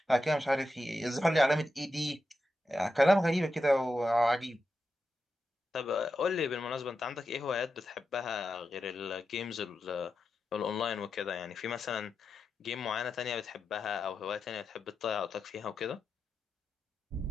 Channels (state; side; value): normal; both; correlation 0.89